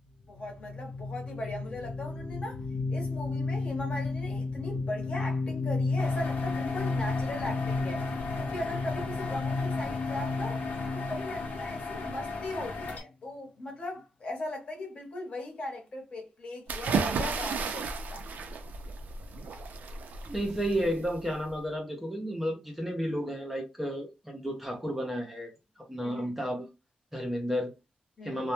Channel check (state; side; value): normal; both; correlation 0.81